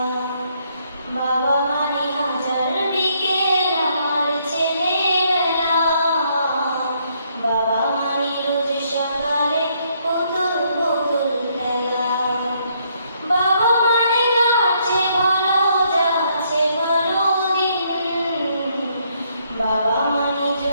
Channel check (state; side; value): inverted; both; correlation -0.71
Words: বাবা মানে হাজার বিকেল আমার ছেলেবেলা, বাবা মানে রোজ সকালে পুতুল পুতুল খেলা। বাবা মানে যাচ্ছে ভালো, যাচ্ছে ভালো দিন, বাবা মানে